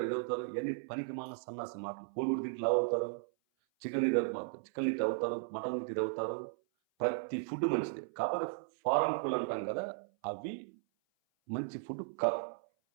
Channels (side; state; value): left; silent; 54 dB below the other